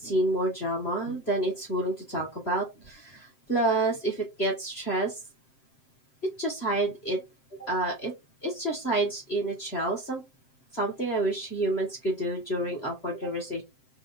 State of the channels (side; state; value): right; late; 7.6 ms